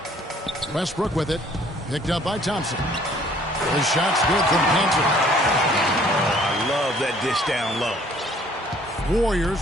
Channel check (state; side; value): normal; both; correlation 0.58